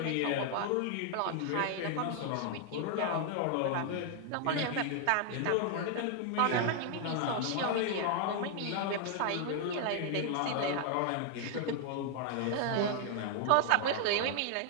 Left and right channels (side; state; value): both; different; correlation 0.00